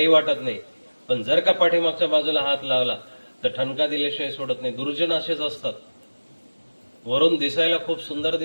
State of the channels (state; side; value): inverted; both; correlation -1.00